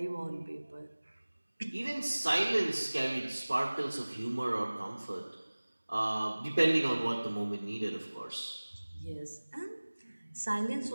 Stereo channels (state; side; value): inverted; both; correlation -1.00